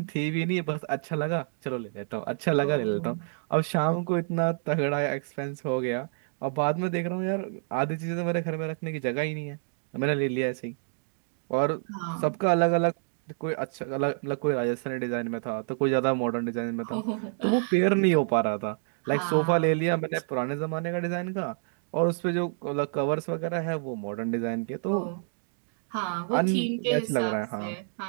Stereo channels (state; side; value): silent; left; digital silence